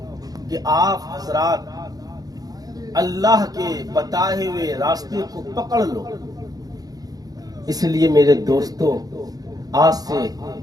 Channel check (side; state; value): left; late; 0.18 ms